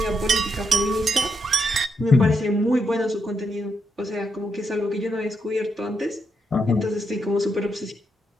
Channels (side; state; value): both; normal; correlation 0.81